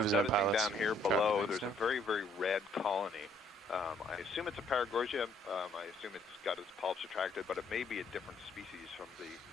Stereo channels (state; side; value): normal; both; correlation 0.66